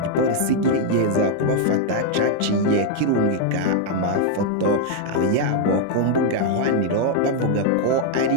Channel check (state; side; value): different; both; correlation 0.00